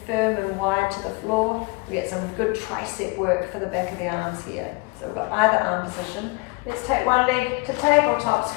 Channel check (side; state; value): right; quieter; 27.1 dB